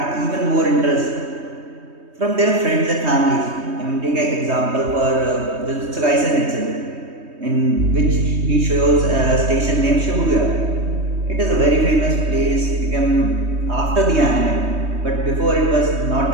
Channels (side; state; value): left; late; 3.2 ms